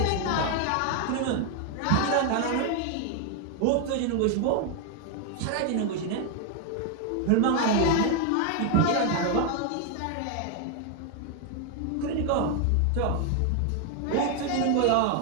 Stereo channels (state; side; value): different; both; correlation 0.00